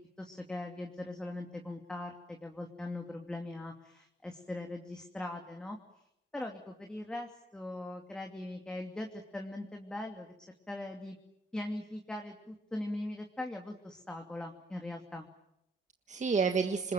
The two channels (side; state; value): both; normal; correlation 0.71